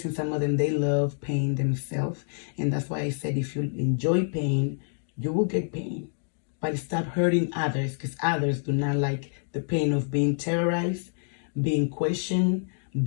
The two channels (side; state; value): right; silent; digital silence